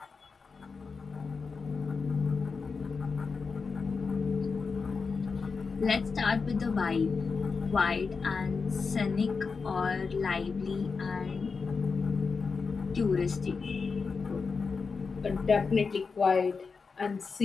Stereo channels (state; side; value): quieter; right; 4.9 dB